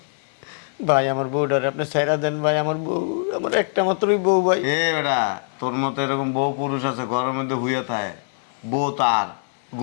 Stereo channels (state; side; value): silent; right; 59 dB below the other